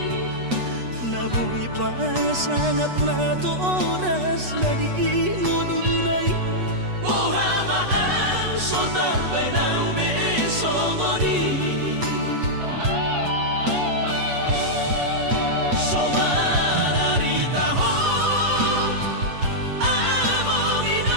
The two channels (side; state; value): left; late; 8.2 ms